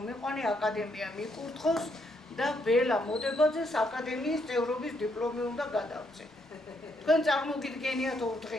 აკადემია მიკურთხოს და ბელა მოდებაძეს აკადემიის წევრობის დიპლომი უნდა გადავწე. თქვენ წარმოგიდგენიათ 2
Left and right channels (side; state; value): both; normal; correlation 0.75